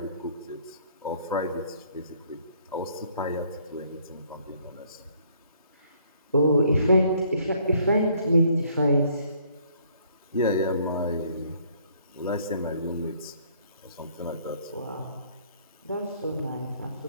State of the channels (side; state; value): both; inverted; correlation -0.63